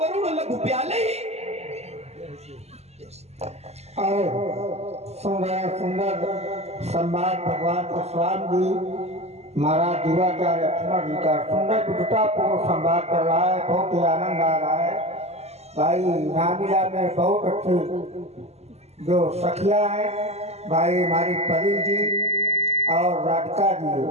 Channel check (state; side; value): late; left; 0.31 ms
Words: गरुड़ लघु प्याले। और सुंदर संवाद भगवान परशुराम जी महाराज दिवाचार्य लक्ष्मण जी का सुंदर विद्वतापूर्ण संवाद कर रहा है। बहुत ही आनंद आ रहा है। भाई नामिला में बहुत अच्छी जो सखिया है, भाई हमारी परी जी और राधिका जी